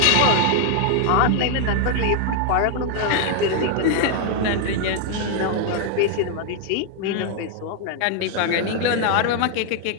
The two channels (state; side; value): different; both; correlation 0.00